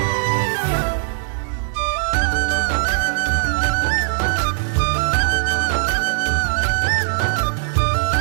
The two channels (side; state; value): left; silent; digital silence